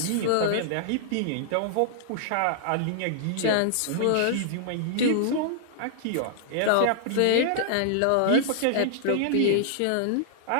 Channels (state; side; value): different; both; correlation -0.01